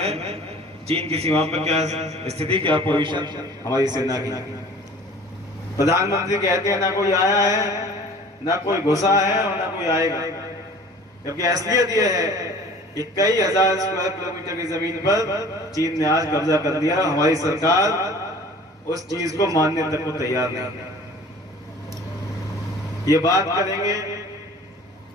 चीन की सीमा पर क्या स्थिति, क्या पोजीशन हमारी सेना की। प्रधानमंत्री कहते हैं ना कोई आया है, ना कोई घुसा है और ना कोई आएगा, जबकि असलियत यह है कि कई हजार स्क्वायर किलोमीटर की जमीन पर चीन ने आज कब्जा कर लिया। हमारी सरकार उस चीज को मानने तक को तैयार नहीं। ये बात करेंगे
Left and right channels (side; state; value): both; normal; correlation 0.46